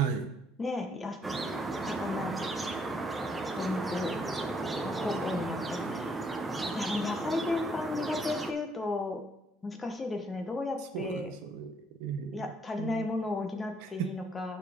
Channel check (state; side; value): normal; both; correlation 0.70